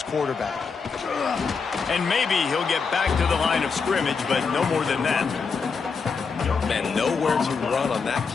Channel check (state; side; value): quieter; right; 5.2 dB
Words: quarterback. And maybe he'll get back to the line of scrimmage, but no more than that. Man, nowhere to run on that